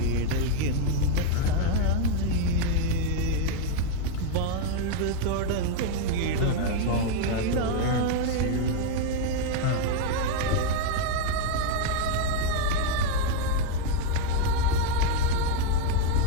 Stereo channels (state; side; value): different; both; correlation 0.01